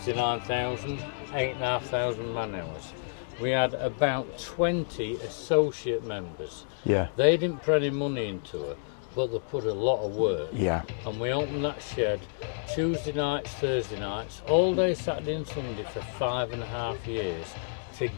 8,500 man hours. We had about 20 associate members. Yeah. They didn't put any money into her, but they put a lot of work. Yeah. And we opened that shed Tuesday nights, Thursday nights, all day Saturday and Sunday for 5.5 years to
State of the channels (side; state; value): right; silent; digital silence